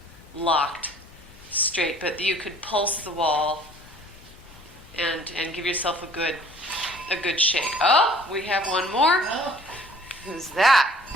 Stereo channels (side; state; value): both; normal; correlation 0.53